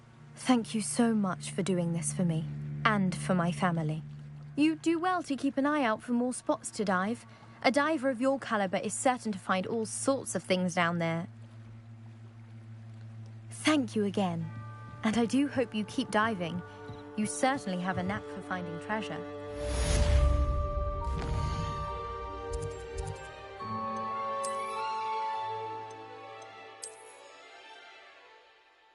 Thank you so much for doing this for me, and for my family. You do well to keep an eye out for more spots to dive. A diver of your caliber is certain to find all sorts of things down there. Thank you again, and I do hope you keep diving. You certainly have a knack for finding treasure.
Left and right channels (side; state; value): both; identical; correlation 1.00